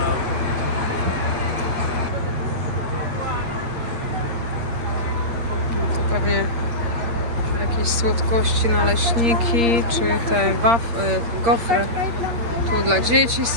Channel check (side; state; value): left; late; 8.6 ms